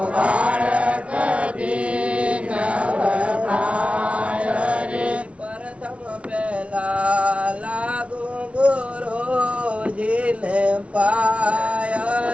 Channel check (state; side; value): late; left; 0.062 ms